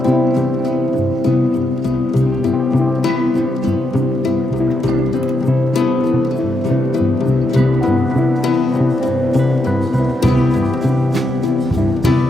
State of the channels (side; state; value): both; normal; correlation 0.82